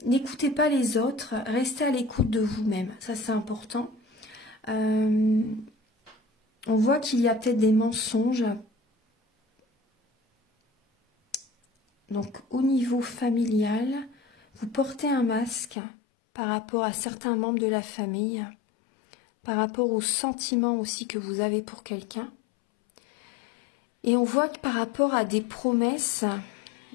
n'écoutez pas les autres, restez à l'écoute de vous-même, ça c'est important. On voit qu'il y a peut-être des mensonges. Donc au niveau familial, vous portez un masque par rapport à certains membres de la famille, par rapport aux sentiments aussi que vous avez pour quelqu'un. Et on voit que par rapport à des promesses,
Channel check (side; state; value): right; drops out; at 15.8 s